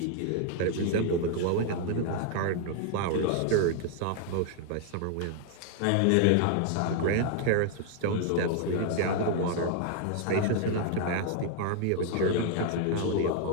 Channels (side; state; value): both; different; correlation 0.00